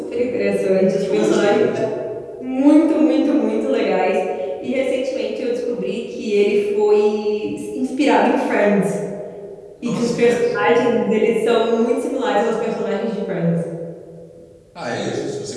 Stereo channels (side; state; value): both; identical; correlation 1.00